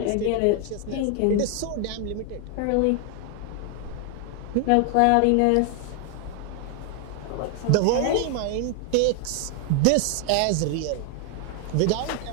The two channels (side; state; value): both; different; correlation 0.00